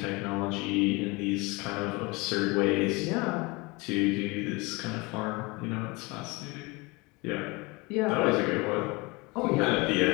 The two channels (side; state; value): right; quieter; 25.6 dB